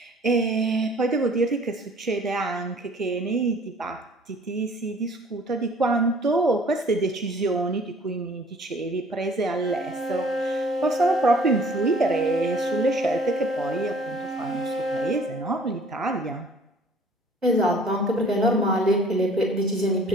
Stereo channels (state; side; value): normal; both; correlation 0.53